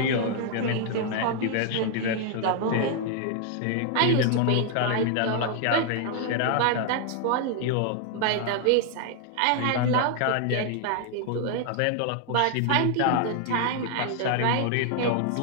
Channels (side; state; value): both; different; correlation 0.00